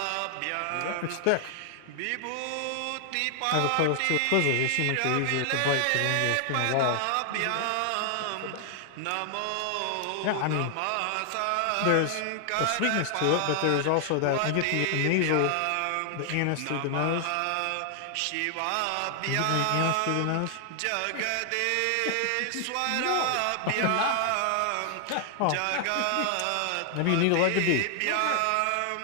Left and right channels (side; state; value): both; different; correlation 0.00